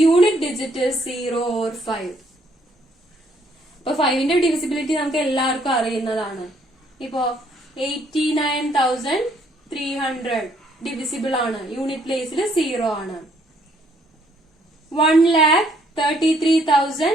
unit digit is 0 or 5. അപ്പൊ 5ന്റെ ഡിവിസിബിലിറ്റി നമുക്ക് എല്ലാവർക്കും അറിയുന്നതാണ്. ഇപ്പോ 89,300 ഡിവിസിബിൾ ആണ്, യൂണിറ്റ് പ്ലേസിൽ 0 ആണ്.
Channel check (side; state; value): both; normal; correlation 0.67